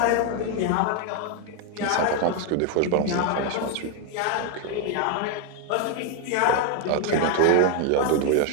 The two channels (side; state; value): both; different; correlation 0.01